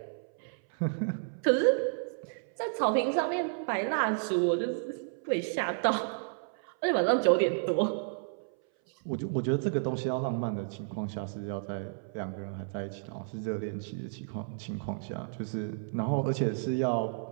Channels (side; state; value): left; silent; 57 dB below the other